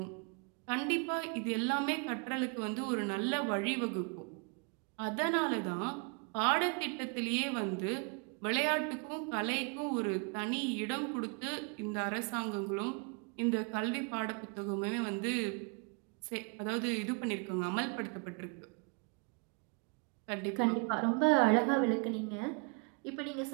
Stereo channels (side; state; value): left; quieter; 34.1 dB